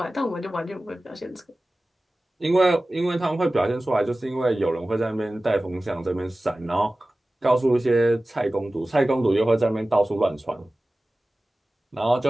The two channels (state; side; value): normal; both; correlation 0.97